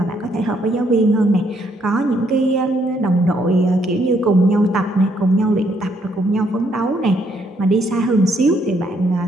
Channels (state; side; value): normal; both; correlation 0.71